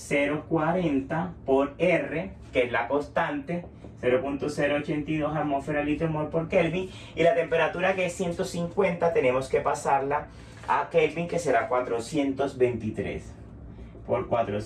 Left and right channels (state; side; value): identical; both; correlation 1.00